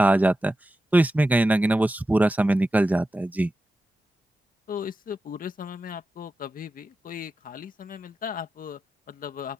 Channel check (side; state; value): both; normal; correlation 0.91